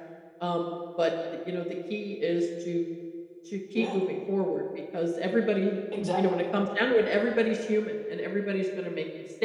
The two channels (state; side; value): identical; both; correlation 1.00